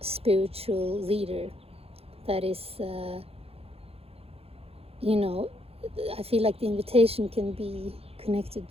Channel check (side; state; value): left; late; 0.29 ms